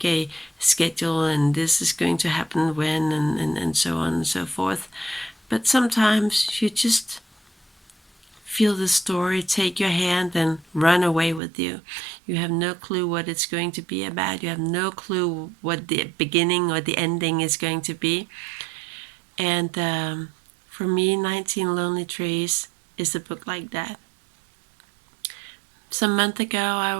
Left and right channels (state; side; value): drops out; left; at 11.4 s